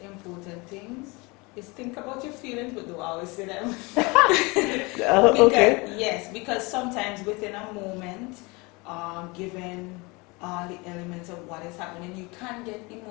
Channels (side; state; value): right; quieter; 26.3 dB